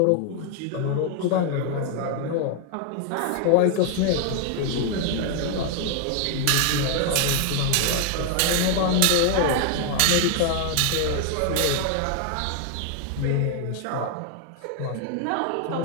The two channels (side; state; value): both; different; correlation 0.00